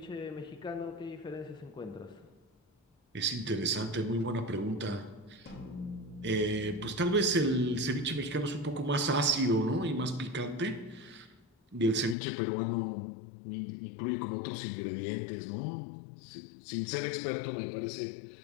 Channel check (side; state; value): right; drops out; at 12.2 s